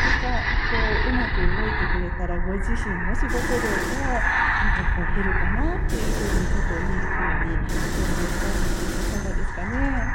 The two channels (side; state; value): both; identical; correlation 1.00